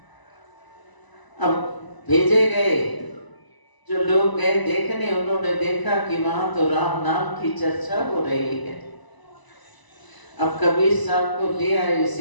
अब भेजे गए, जो लोग गए देखने, उन्होंने देखा कि वहां तो राम नाम की चर्चा हो रही है। अब कबीर साहब को ले आए,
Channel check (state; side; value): late; right; 1.0 ms